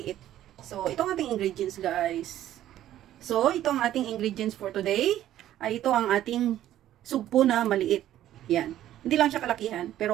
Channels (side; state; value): left; quieter; 12.6 dB